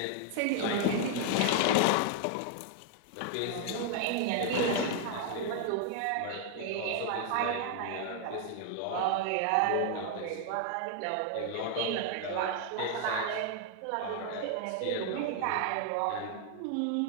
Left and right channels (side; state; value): both; different; correlation 0.00